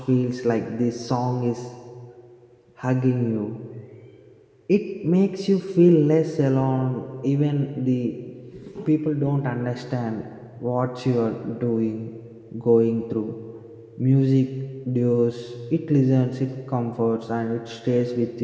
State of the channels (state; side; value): identical; both; correlation 1.00